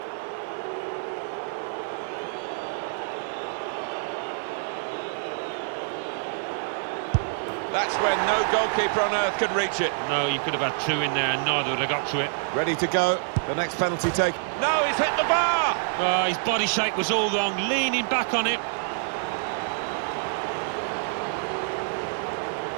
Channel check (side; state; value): left; silent; 60 dB below the other